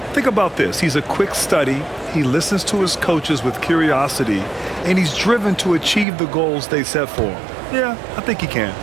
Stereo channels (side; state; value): left; drops out; at 6.1 s